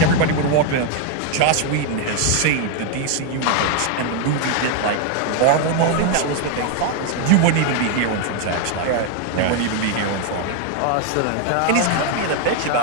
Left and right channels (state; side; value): different; both; correlation 0.01